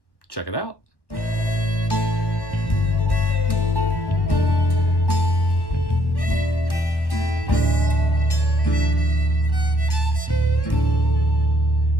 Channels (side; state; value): right; late; 1.1 ms